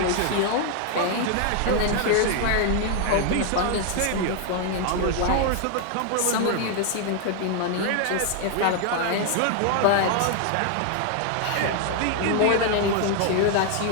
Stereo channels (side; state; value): both; different; correlation 0.00